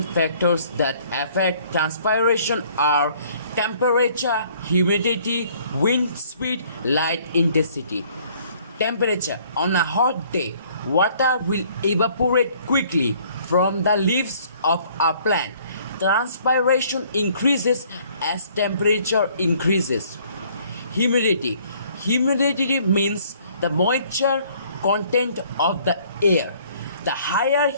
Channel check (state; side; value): inverted; both; correlation -0.59